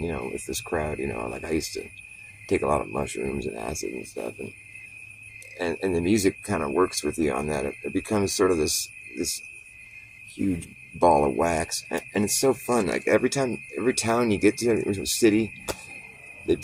you know, with this crowd, you know. Like, I used to take a lot of mushrooms and acid and stuff, and the music kind of works with you on that. It becomes sort of this huge ball of wax, and it's so fun. Like, every town you get to, every city, they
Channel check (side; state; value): both; identical; correlation 1.00